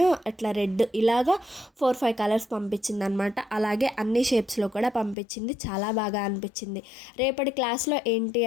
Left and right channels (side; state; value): right; drops out; at 5.2 s